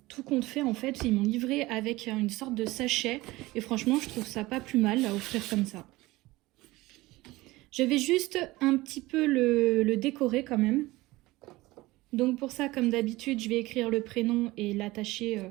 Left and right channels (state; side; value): quieter; left; 19.6 dB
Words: tout compte fait, en fait, ils m'ont livré avec une sorte de sachet. Et franchement, je trouve ça pas plus mal à offrir comme ça. Je vais juste un petit peu le décorer quand même. Donc pour ça, comme d'habitude, je vais écrire le prénom et l'attacher